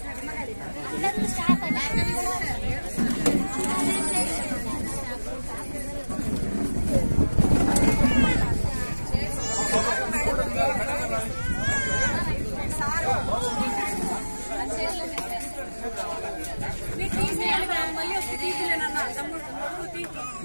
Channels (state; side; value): inverted; both; correlation -1.00